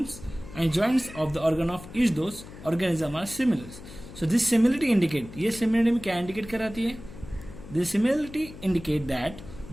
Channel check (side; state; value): left; noise; hum, 15 dB below the sound